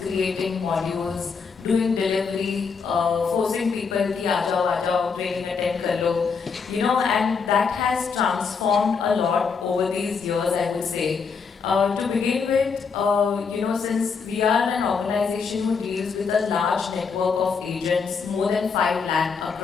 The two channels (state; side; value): quieter; right; 5.5 dB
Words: modules, doing delivery, forcing people ki aa jao, training attend kar lo, you know, and that has transformed a lot over these years, I would say. To begin with, you know, since we are an organization who deals with a large network of agents, more than 5 lakh